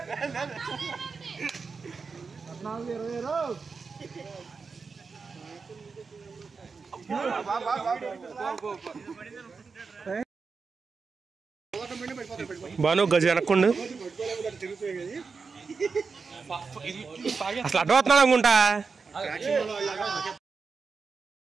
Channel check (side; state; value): left; quieter; 4.9 dB